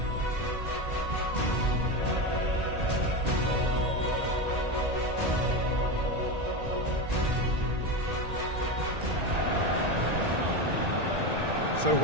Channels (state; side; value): late; left; 1.8 ms